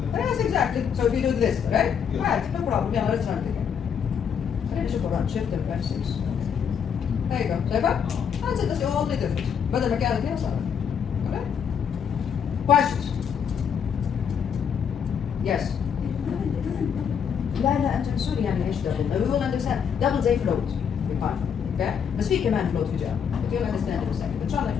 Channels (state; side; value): quieter; right; 7.5 dB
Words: Yes, exactly. So if you do this, right? Yeah. عادي, no problem. يلا let's run it again. خلينا نشوف الرن shift and F6. There you go. شايفها؟ That's it. That's the only difference. بدل ما كانت هنا صارت. Okay? Questions? Yes. لا لا انت سوري يعني ايش دبل؟ We will understand. Double زي float في Python. Okay? بس في كمان float في Java. But you'll understand in a second. إن شاء الله